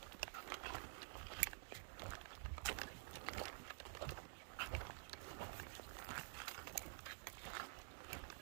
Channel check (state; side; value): silent; left; digital silence